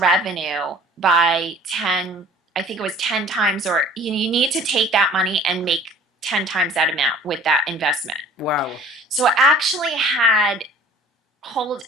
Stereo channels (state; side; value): normal; both; correlation 0.49